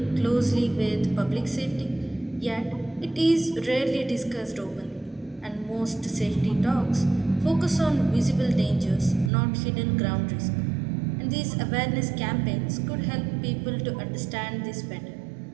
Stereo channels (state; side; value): drops out; left; at 9.3 s